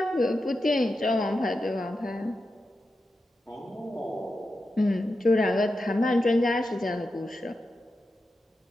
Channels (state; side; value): normal; both; correlation 0.89